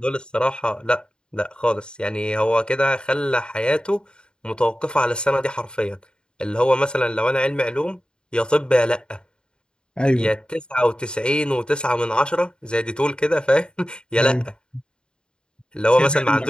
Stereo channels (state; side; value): late; right; 0.050 ms